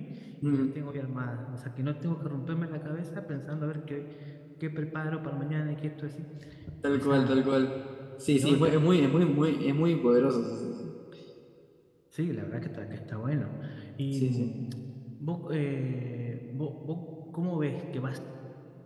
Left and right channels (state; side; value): identical; both; correlation 1.00